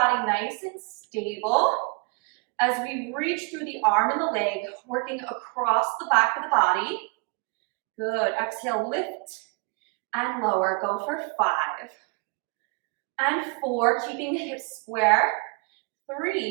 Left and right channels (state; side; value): quieter; left; 33.6 dB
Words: nice and stable as we reach through the arm and the leg, working across the back of the body. Good. Exhale, lift and lower. Go for 5 and 4, keeping the hips square.